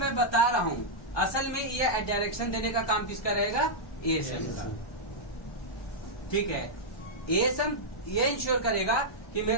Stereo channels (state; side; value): late; right; 1.2 ms